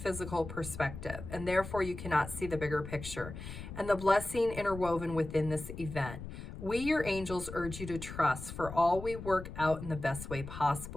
perspective, and therefore you cannot see the bigger picture and the blessing interwoven within this event. We, your angels, urge you to trust, for all we work out in the best way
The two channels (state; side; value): noise; left; rumble, 10 dB below the sound